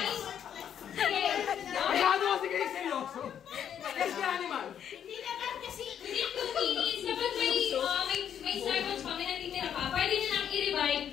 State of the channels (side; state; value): right; quieter; 9.0 dB